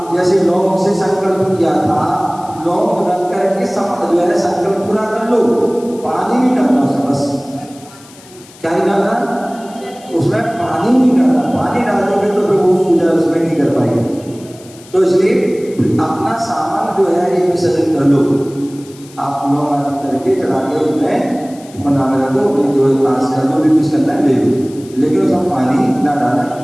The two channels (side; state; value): left; noise; hiss, 23 dB below the sound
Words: जैसे लौंग से संकल्प किया था, लौंग रख करके जो है संकल्प पूरा कर लो। पानी नहीं डालना उसमें, बस क्या नहीं डालना, उसमें पानी नहीं डालना। पानी डाल दोगे तो फिर वो पूजा उसमें नहीं कर पाएंगे। तो इसलिए अपना सामान जो है ये विसर्जन कर लो। आप लौंग आदि करके चढ़ा के उसमें बना में दो, जो पास कर लो, भी कुछ करना है ले लो, लेकिन उसमें पानी ना डाला